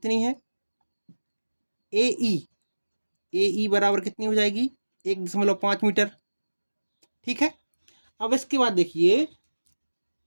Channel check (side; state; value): both; inverted; correlation -1.00